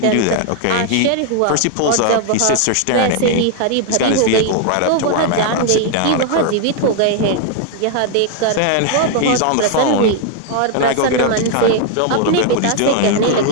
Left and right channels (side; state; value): both; different; correlation 0.00